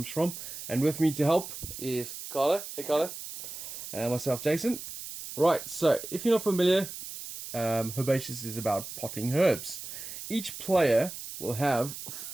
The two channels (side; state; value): right; noise; hiss, 10 dB below the sound